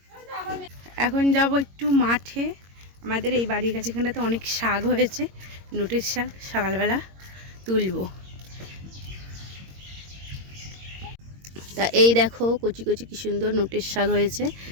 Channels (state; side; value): late; left; 22 ms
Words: এখন যাব একটু মাঠে। আমাদের এই বাড়ির কাছে এখানটাতে অনেক শাক হয়েছে, নোটের শাক। সকালবেলা তুলবো। তা এই দেখো কচি কচি কি সুন্দর নোটের শাক হয়েছে,